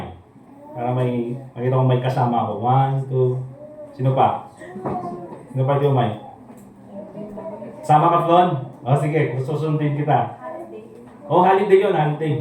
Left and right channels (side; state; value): both; identical; correlation 1.00